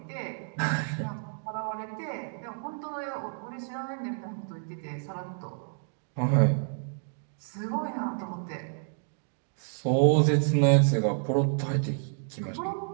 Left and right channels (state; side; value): silent; left; digital silence